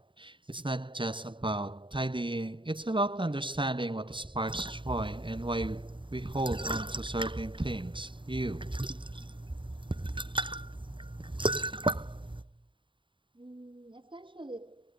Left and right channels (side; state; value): left; late; 0.24 ms